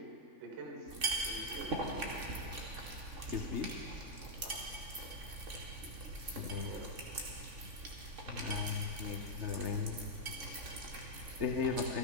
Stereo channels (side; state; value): left; late; 3.6 ms